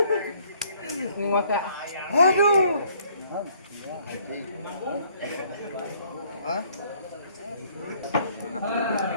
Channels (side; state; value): both; inverted; correlation -0.62